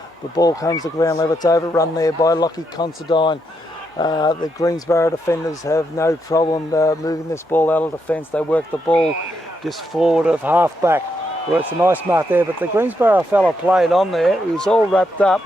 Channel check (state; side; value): normal; both; correlation 0.80